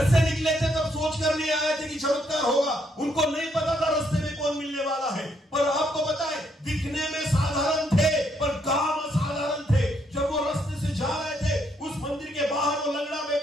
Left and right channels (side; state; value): both; normal; correlation 0.73